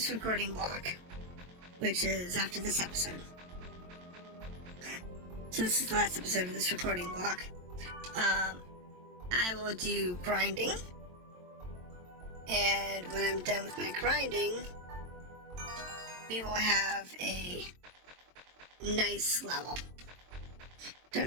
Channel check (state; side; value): late; left; 22 ms